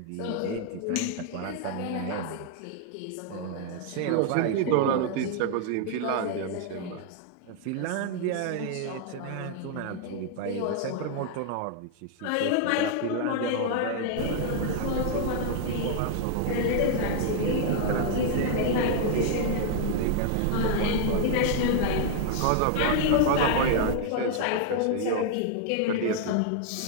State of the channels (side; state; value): both; different; correlation 0.00